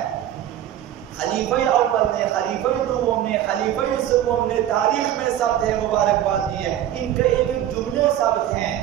خلیفہ اول نے، خلیفہ دوم نے، خلیفہ سوم نے تاریخ میں ثبت ہے مبارکباد دی ہے. ان کے ایک ایک جملے ثبت ہیں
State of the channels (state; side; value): quieter; left; 11.7 dB